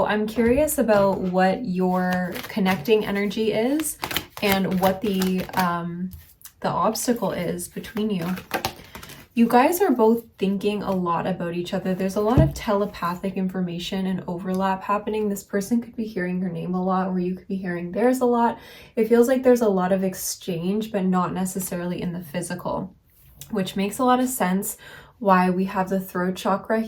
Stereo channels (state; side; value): identical; both; correlation 1.00